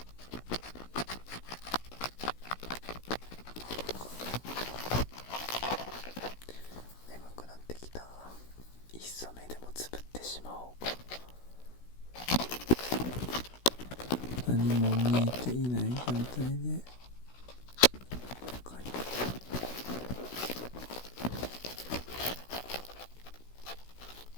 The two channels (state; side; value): late; right; 16 ms